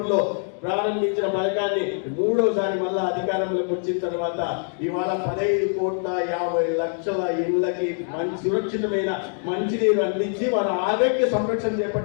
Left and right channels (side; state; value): right; silent; 60 dB below the other